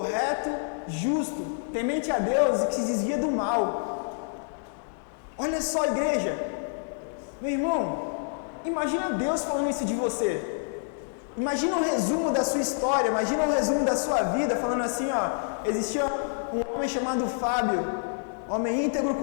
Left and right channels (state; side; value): silent; right; digital silence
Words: justo, temente a Deus e que se desvia do mal. Olha só, igreja, meu irmão, imagina Deus falando isso de você. Imagina um resumo da sua história, imagina um resumo da sua vida, falando assim, ó: existia um homem chamado Fábio, homem íntegro,